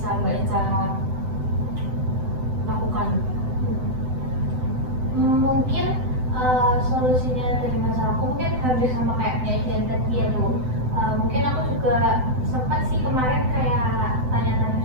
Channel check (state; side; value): late; left; 7.9 ms